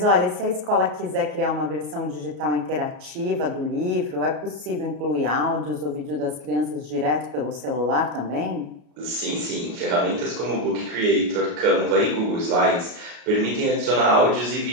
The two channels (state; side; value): late; left; 33 ms